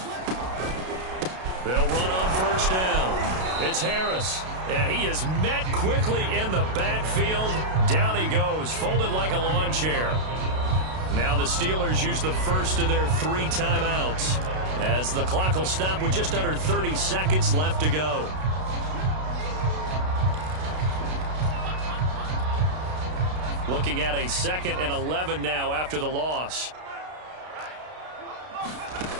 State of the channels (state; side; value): late; left; 32 ms